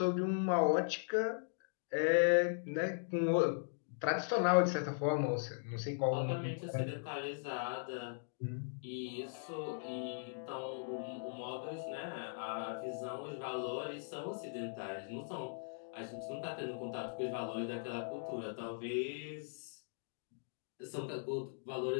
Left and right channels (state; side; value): silent; right; digital silence